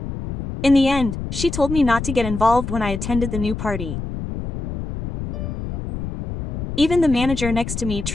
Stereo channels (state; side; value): noise; left; rumble, 6 dB below the sound